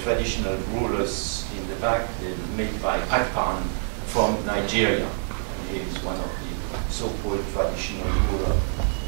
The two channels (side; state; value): left; silent; digital silence